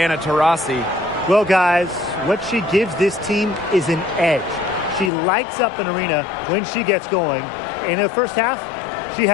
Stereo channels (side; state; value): right; drops out; at 5.1 s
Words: Taurasi. Well, guys, what she gives this team is an edge. She lights up an arena when she gets going. In the first half, she